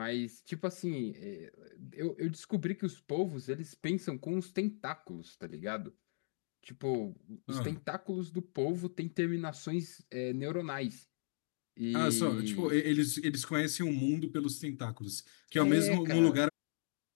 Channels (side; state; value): right; silent; digital silence